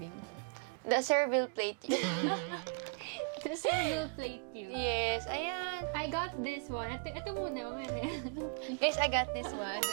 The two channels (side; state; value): left; quieter; 38.0 dB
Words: The servile plate. The serving plate you. Yes. Ayan. I got this one. Ito muna, mamaya. Guys, I got this one.